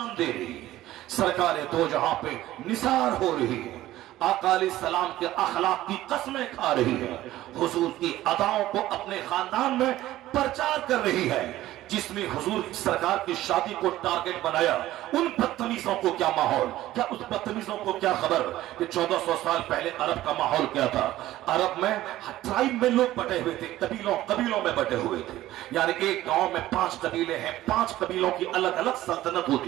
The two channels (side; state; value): left; quieter; 15.0 dB